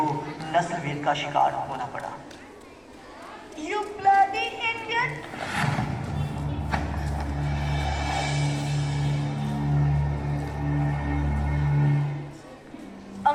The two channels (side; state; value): both; identical; correlation 1.00